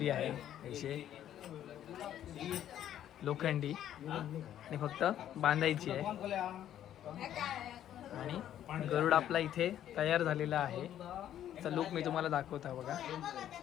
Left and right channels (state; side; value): quieter; right; 11.1 dB